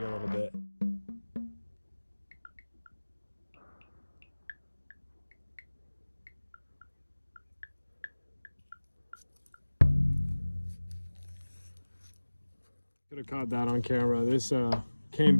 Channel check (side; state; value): both; inverted; correlation -1.00